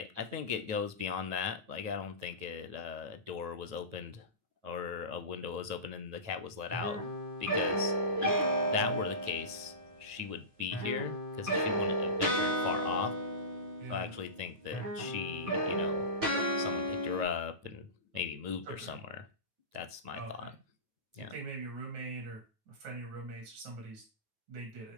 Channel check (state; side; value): late; left; 9.3 ms